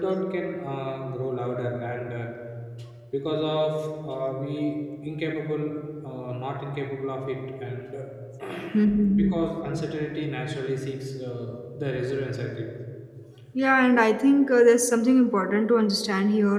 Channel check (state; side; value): identical; both; correlation 1.00